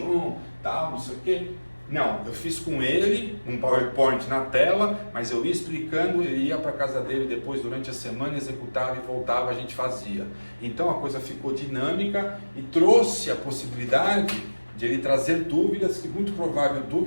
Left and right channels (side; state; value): both; inverted; correlation -1.00